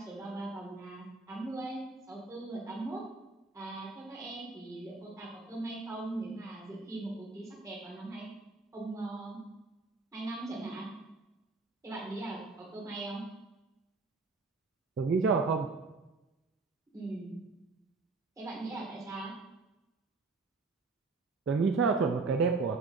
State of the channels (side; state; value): left; quieter; 3.9 dB